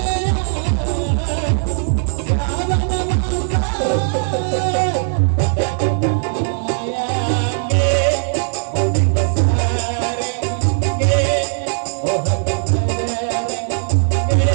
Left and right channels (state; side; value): silent; left; digital silence